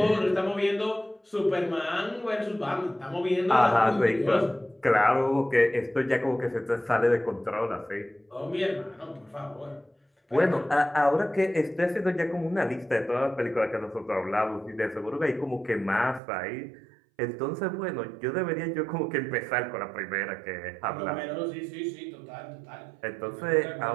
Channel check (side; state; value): left; drops out; at 16.2 s